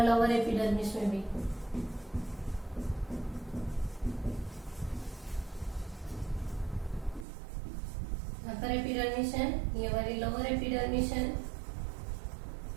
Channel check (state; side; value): drops out; left; at 7.2 s